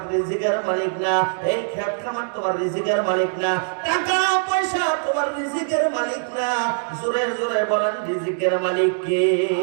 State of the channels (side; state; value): left; silent; digital silence